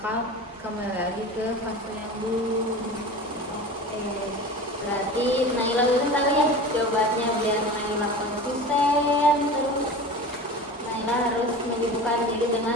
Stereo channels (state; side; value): normal; both; correlation 0.34